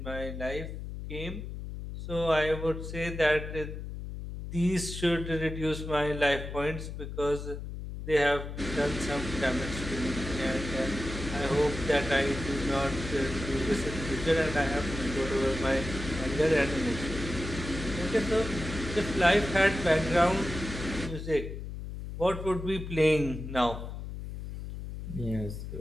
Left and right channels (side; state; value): left; noise; hum, 8 dB below the sound